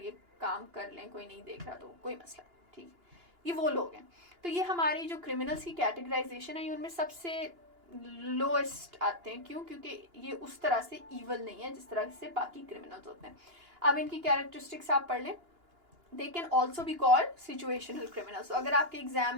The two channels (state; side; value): late; left; 2.9 ms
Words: काम कर लें, कोई नहीं देख रहा तो कोई मसला, ठीक, ये वो लोग हैं। तो ये हमारी जो क्रिमिनल्स की कैटेगराइजेशन है, ये उनमें सबसे लोएस्ट आते हैं। क्यों? क्योंकि ये उस तरह से ईवल नहीं है जिस तरह से बाकी क्रिमिनल्स होते हैं। अब इनकी कैरेक्टरिस्टिक्स आप पढ़ लें। They can also be called situational criminals. तो अगर आपके एग्जाम